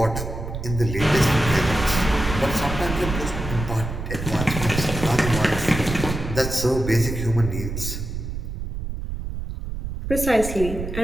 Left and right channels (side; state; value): right; noise; rumble, 6 dB below the sound